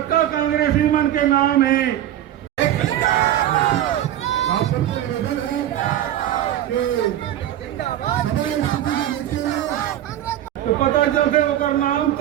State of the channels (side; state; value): left; quieter; 12.0 dB